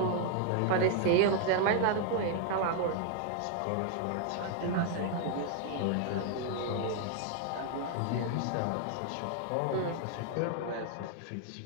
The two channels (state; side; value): different; both; correlation 0.00